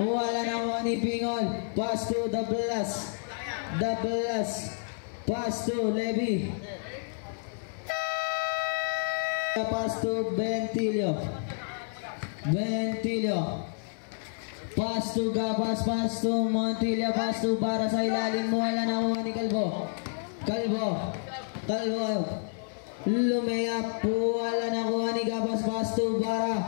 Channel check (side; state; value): right; silent; 58 dB below the other